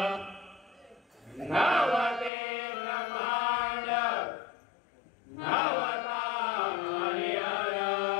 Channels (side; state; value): right; drops out; at 2.3 s